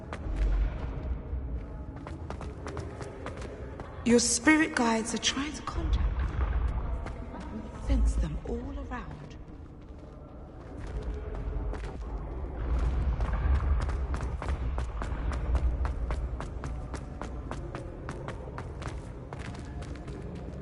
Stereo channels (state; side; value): identical; both; correlation 1.00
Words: Your spirit guides are trying to contact you. I can sense them all around.